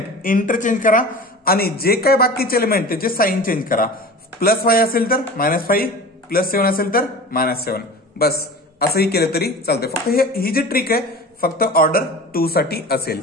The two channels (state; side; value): normal; both; correlation 0.36